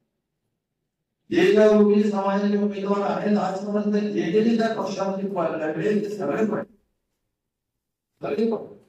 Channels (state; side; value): identical; both; correlation 1.00